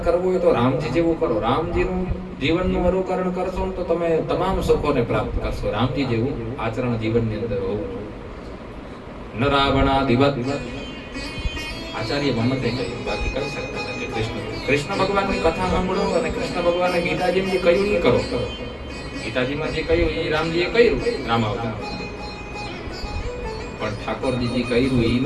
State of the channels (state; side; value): identical; both; correlation 1.00